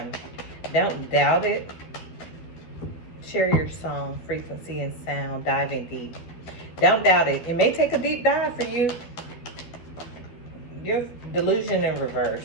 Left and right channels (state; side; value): late; right; 12 ms